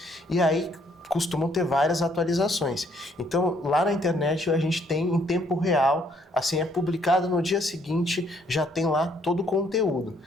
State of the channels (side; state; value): both; normal; correlation 0.67